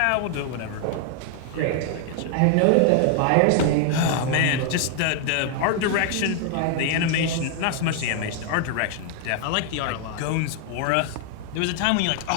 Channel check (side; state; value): both; different; correlation 0.00